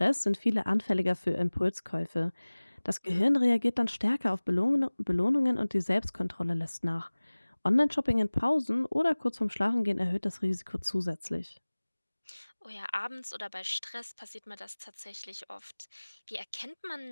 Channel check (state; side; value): inverted; both; correlation -1.00